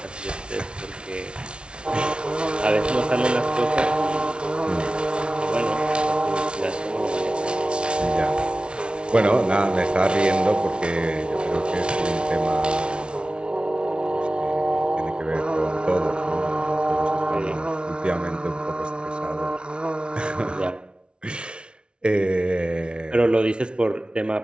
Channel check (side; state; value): left; late; 0.057 ms